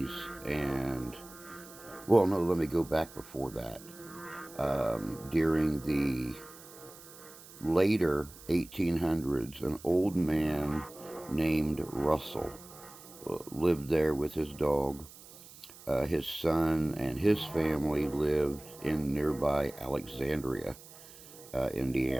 and well, no, let me go back before that. During the later 1800s, an old man named Russell lived there with his dog. His son and his family lived in nearby Alexandria,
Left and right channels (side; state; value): right; noise; hiss, 19 dB below the sound